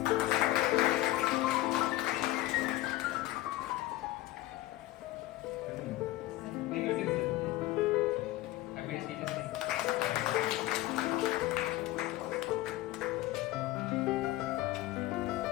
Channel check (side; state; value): right; quieter; 16.9 dB